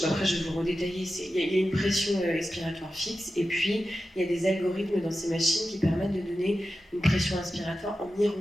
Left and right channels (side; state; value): both; normal; correlation 0.92